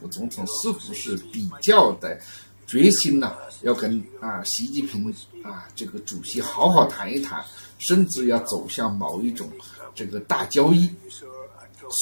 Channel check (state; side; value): inverted; both; correlation -1.00